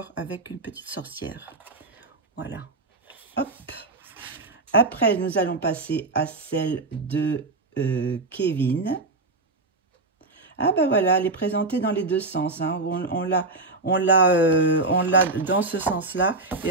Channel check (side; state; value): left; quieter; 3.3 dB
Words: avec une petite sorcière. Voilà. Hop. Après, nous allons passer à celle de Kevin. Ah, ben voilà, elle est présentée dans les deux sens. Hein. On l'a dans ce sens-là et